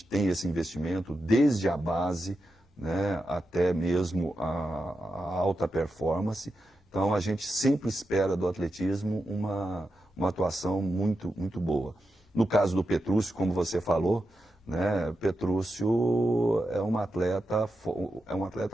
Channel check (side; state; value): both; normal; correlation 0.89